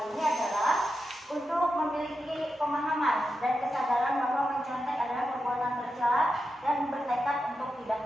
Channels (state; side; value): normal; both; correlation 0.89